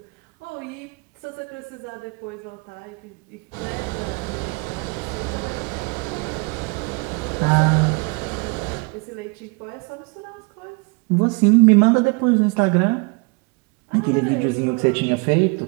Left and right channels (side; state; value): left; quieter; 30.7 dB